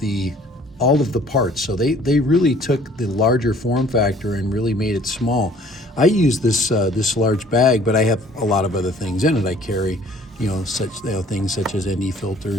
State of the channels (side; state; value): both; normal; correlation 0.55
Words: parts. So they really took the larger form factor and really made it small. I use this large bag, but I have a lot of other things in it. I carry things such as ND